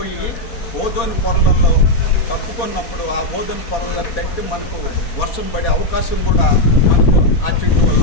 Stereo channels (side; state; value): right; late; 4.2 ms